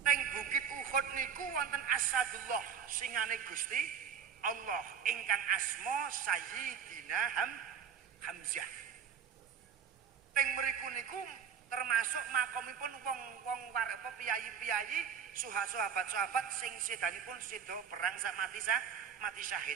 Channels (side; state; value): left; quieter; 7.3 dB